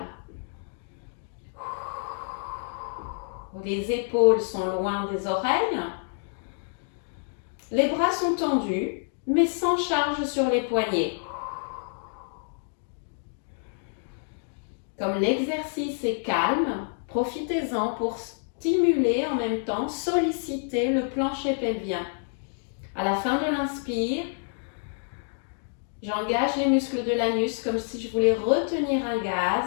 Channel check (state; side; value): silent; right; digital silence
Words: Les épaules sont loin des oreilles. Les bras sont tendus, mais sans charge sur les poignets. Comme l'exercice est calme, profitez-en pour stimuler en même temps, solliciter le plancher pelvien. À la fin de l'inspire, j'engage les muscles de l'anus comme si je voulais retenir un